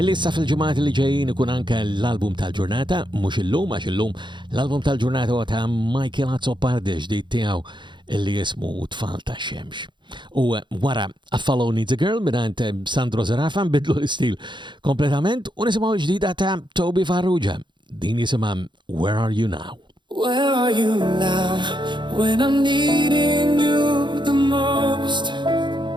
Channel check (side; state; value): left; late; 0.23 ms